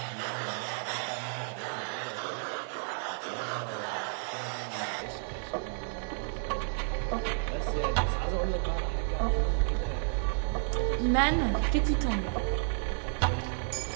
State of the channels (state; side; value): silent; left; 57 dB below the other